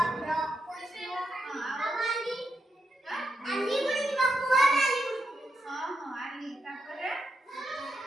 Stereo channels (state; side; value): normal; both; correlation 0.84